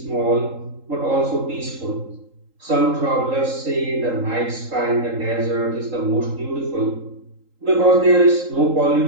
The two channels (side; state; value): left; late; 3.8 ms